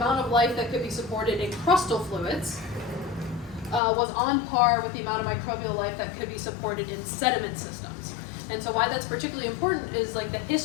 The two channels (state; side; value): drops out; right; at 3.8 s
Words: of life that could be supported in crustal fluids was on par with the amount of microbial life that could be supported in sediment systems. And so why that's particularly important is like the